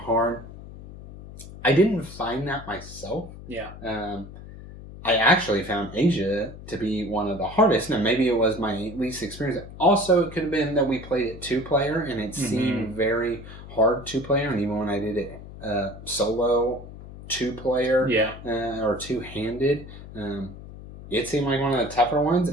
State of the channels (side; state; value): left; noise; hum, 15 dB below the sound